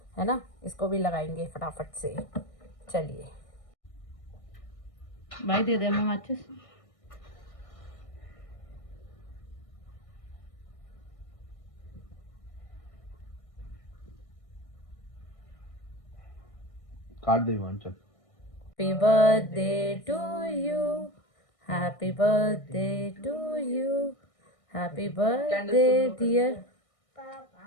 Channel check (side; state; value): right; late; 1.6 ms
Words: है ना। इसको भी लगाएंगे फटाफट से। चलिए भाई दे दे मैं माचिस। काट दे चल। Happy birthday to you, happy birthday to you, happy birthday dear.